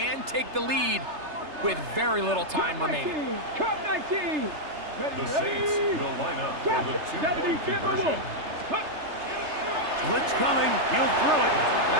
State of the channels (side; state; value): left; late; 3.3 ms